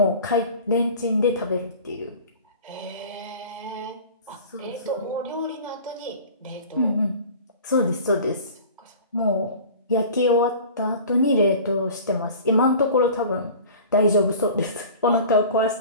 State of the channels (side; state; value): both; inverted; correlation -0.40